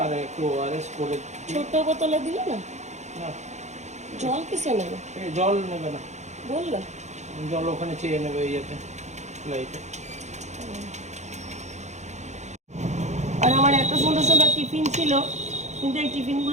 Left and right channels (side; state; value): left; late; 0.33 ms